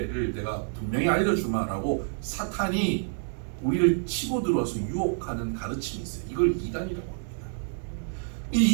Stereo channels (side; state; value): left; silent; digital silence